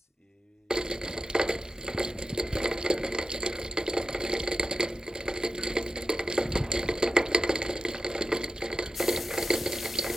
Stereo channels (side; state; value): both; normal; correlation 0.89